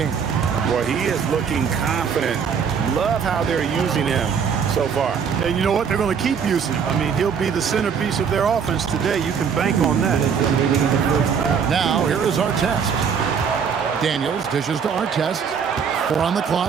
Boy, he is looking confident. Love how they're using him so far. And you know what? They're going to keep using him. I mean, he'll be the centerpiece of their offense today. You can bank on that. Now, here is Artest. Daniels dishes to Artest. 4 on the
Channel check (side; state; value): left; quieter; 6.8 dB